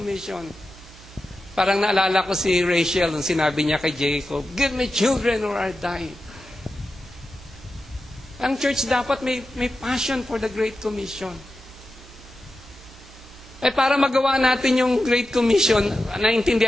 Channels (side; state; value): both; normal; correlation 0.91